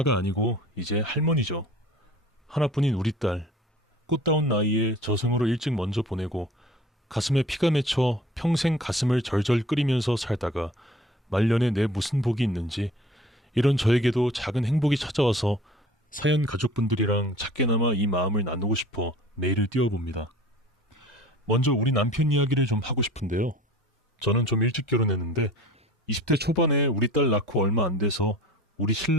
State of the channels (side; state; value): both; normal; correlation 0.45